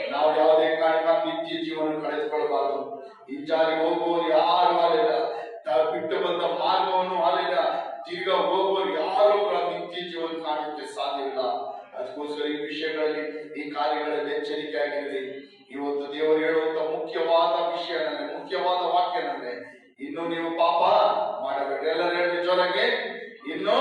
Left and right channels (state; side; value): identical; both; correlation 1.00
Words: ನಾವು ಯಾವುದೇ ಕಾರಣಕ್ಕೆ ನಿತ್ಯ ಜೀವನ ಕಳೆದುಕೊಳ್ಳಬಾರದು. ಹಿಂಜಾರಿ ಹೋಗುವವರು ಯಾರು ಅಲ್ಲಿಲ್ಲ. ಬಿಟ್ಟು ಬಂದ ಮಾರ್ಗವನ್ನು ಅಲ್ಲಿಲ್ಲ. ತಿರ್ಗಾ ಹೋಗುವವರು ಯಾರು ನಿತ್ಯ ಜೀವನ ಕಾಣಕ್ಕೆ ಸಾಧ್ಯವಿಲ್ಲ. ಅದಕ್ಕೋಸ್ಕರ ಈ ವಿಷಯಗಳಲ್ಲಿ, ಈ ಕಾರ್ಯಗಳಲ್ಲಿ ಎಚ್ಚರಿಕೆ ಆಗಿರಲಿ. ಇವತ್ತು ದೇವರು ಹೇಳುವಂತ ಮುಖ್ಯವಾದ ವಿಷಯ ನನಗೆ, ಮುಖ್ಯವಾದ ವಾಕ್ಯ ನನಗೆ, ಇನ್ನು ನೀವು ಪಾಪ ಮಾಡಬೇಡ್ರಿ. ಎಲ್ಲರೂ ಹೇಳಿ ಜೋರಾಗಿ, ಇನ್ನು